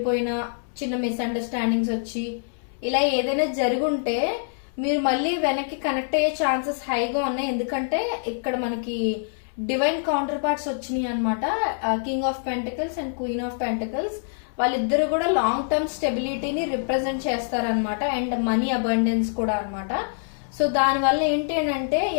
చిన్న మిస్అండర్స్టాండింగ్స్ వచ్చి ఇలా ఏదైనా జరుగుంటే మీరు మళ్ళీ వెనక్కి కనెక్ట్ అయ్యే ఛాన్సెస్ హైగా ఉన్నాయి. ఎందుకంటే ఇక్కడ మనకి డివైన్ కౌంటర్ పార్ట్స్ వచ్చినాయి అనమాట. King of pentacles and queen of pentacles వాళ్ళిద్దరు కూడా లాంగ్ టర్మ్ స్టెబిలిటీని రిప్రజెంట్ చేస్తారనమాట. అండ్ మనీ అబండెన్స్ కూడా అనమాట. సో దానివల్ల ఏంటి అంటే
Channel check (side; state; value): right; silent; 62 dB below the other